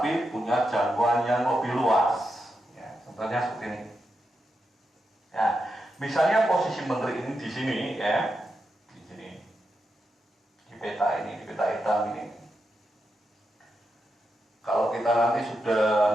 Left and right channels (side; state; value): both; normal; correlation 0.86